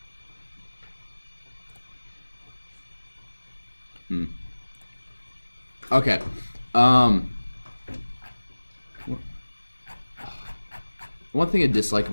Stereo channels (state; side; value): inverted; both; correlation -1.00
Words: Okay. One thing I dislike